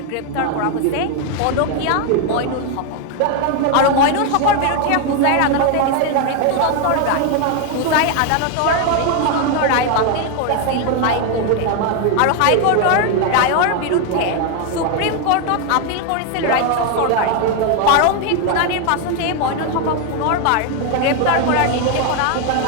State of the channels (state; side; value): different; both; correlation 0.01